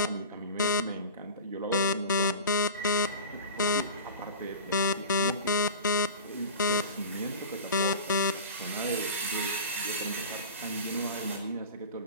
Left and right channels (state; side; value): inverted; both; correlation -0.35